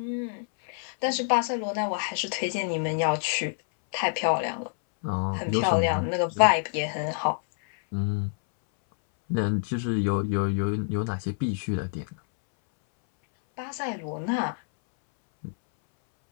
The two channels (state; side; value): silent; right; 60 dB below the other